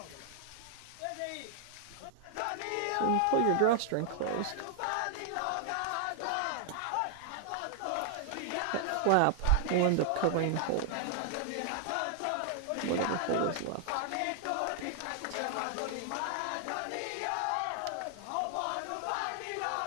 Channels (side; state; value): both; different; correlation 0.00